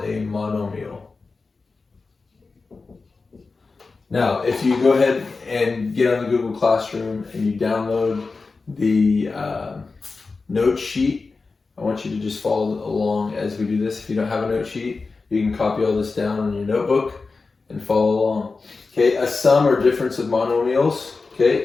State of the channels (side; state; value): right; quieter; 4.1 dB